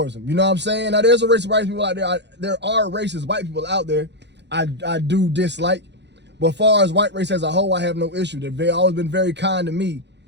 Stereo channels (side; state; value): left; late; 0.50 ms